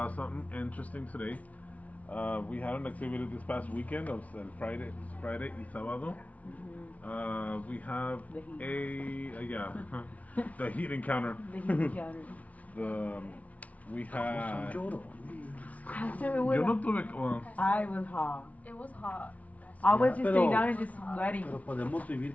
something interesting today. We had an activity this past weekend of Friday y sábado. We have The heat. yeah, the heat encounter. The heat encounter. The we Son had. llorones. Pastor, it was, Yo no tuve. Well, I was hot. It was hot. I was just Pero- sitting down and just sweating. Pero podemos vivir.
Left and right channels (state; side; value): late; right; 0.069 ms